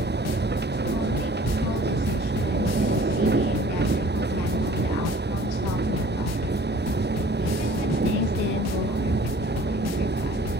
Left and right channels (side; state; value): both; normal; correlation 0.51